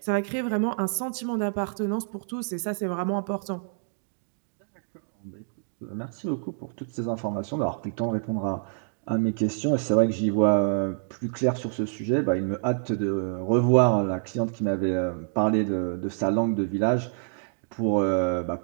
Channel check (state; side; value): silent; left; digital silence